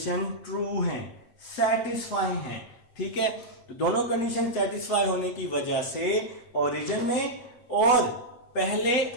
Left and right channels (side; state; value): right; late; 8.1 ms